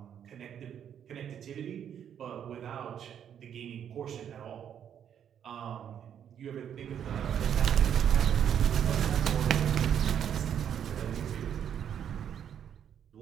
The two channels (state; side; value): quieter; left; 9.0 dB